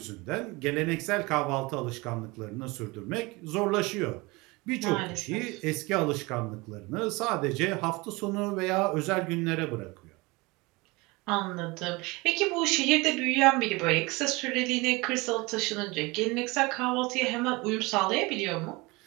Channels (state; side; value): quieter; left; 24.2 dB